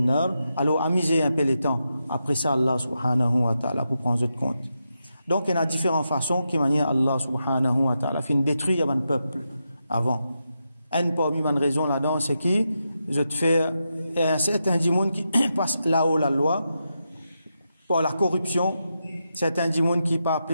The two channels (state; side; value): inverted; both; correlation -0.86